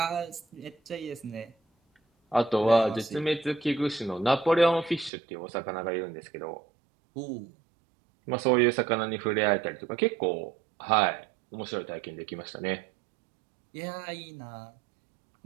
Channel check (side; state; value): left; drops out; at 5.1 s